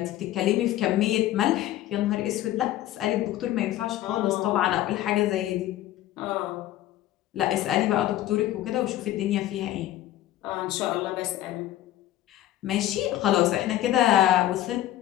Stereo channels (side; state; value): right; quieter; 13.9 dB